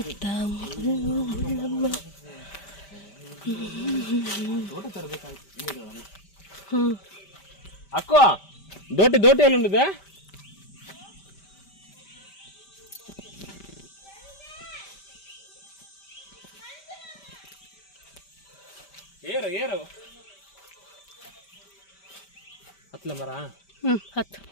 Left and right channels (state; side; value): late; right; 5.1 ms